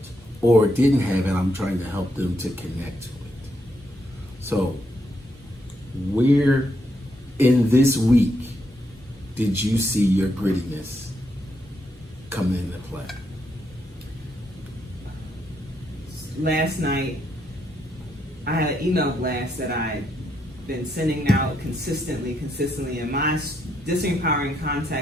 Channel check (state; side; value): normal; both; correlation 0.78